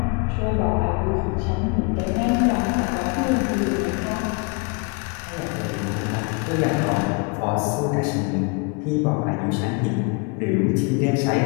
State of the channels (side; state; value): right; quieter; 31.9 dB